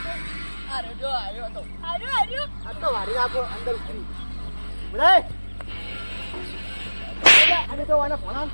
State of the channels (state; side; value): inverted; both; correlation -1.00